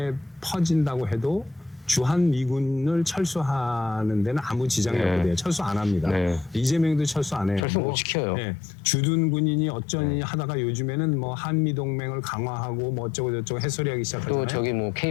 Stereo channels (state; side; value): drops out; right; at 7.6 s